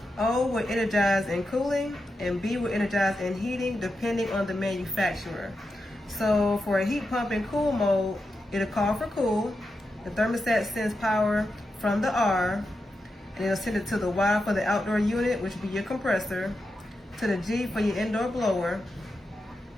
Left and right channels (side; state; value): both; normal; correlation 0.88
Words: O will energize in cooling, and B will energize in heating depending on the manufacturer. So for a heat pump in cool mode, it'll call for cool. The thermostat sends power from the R, and it'll send it to the Y for the outdoor unit, which will be your compressor, to the G for your indoor blower,